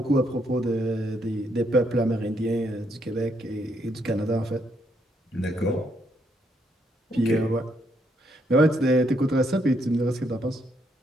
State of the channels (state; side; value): normal; both; correlation 0.74